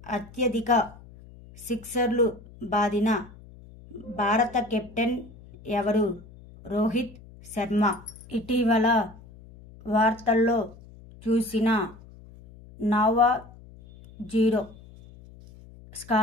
అత్యధిక సిక్సర్లు బాదిన భారత కెప్టెన్ ఎవరు? రోహిత్ శర్మ. ఇటీవల వార్తల్లో చూసిన నోవా జీరో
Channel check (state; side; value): noise; left; hum, 21 dB below the sound